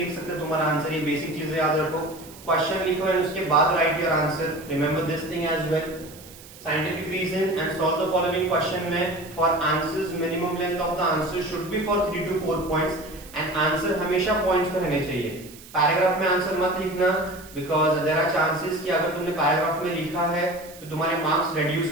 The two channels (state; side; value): noise; right; hiss, 19 dB below the sound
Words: लिख सकते तुम्हारा आंसर, ये बेसिक चीजें याद रखो। क्वेश्चन लिखो और उसके बाद write your answer, remember this thing as well. Scientific reason and solve the following question में for answers minimum length of the answer should be for 3 to 4 points and answer हमेशा points पे रहने चाहिए। Paragraph में answer मत लिखना because there are chances कि अगर तुमने पैराग्राफ में लिखा है तो तुम्हारे मार्क्स reduce